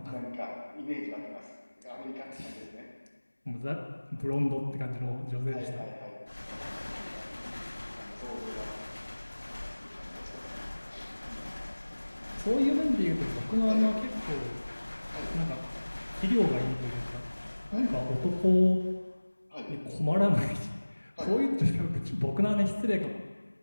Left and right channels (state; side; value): inverted; both; correlation -1.00